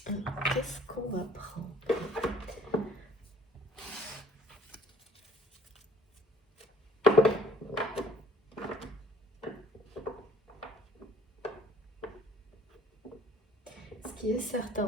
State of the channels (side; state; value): both; normal; correlation 0.56